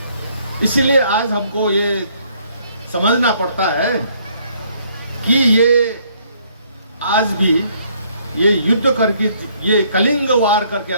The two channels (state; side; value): inverted; both; correlation -0.66